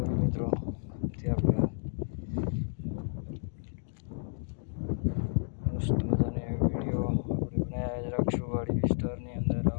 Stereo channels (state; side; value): silent; right; digital silence